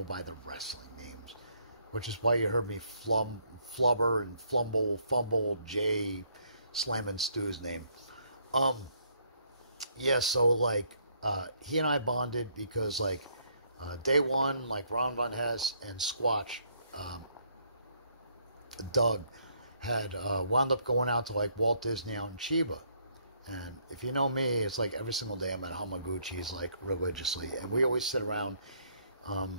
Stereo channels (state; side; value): inverted; both; correlation -0.69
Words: by the wrestling names, which is why you heard me flubber and fumble Jay slamming Stu's name. Yeah, so like he and I bonded because like day one, like Ron Von Hess and Squatch, Doug had wound up going out to like Walt Disney out in Chiba. And if you know me, it's like every single day I'm at Hamaguchi's, like, religiously. And we always sit around,